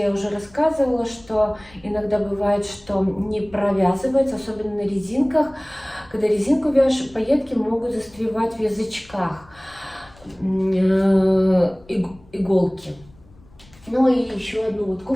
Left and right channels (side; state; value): left; noise; rumble, 26 dB below the sound